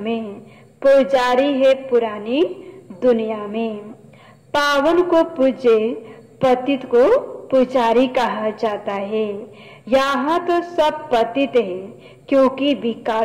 पुजारी है पुरानी दुनिया में। पावन को पूज्य, पतित को पुजारी कहा जाता है। यहाँ तो सब पतित है, क्योंकि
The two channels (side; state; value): both; identical; correlation 1.00